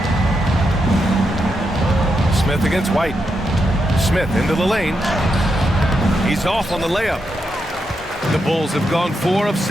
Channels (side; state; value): both; normal; correlation 0.84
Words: Smith against White. Smith into the lane. He's off on the layup. The Bulls have gone 4 of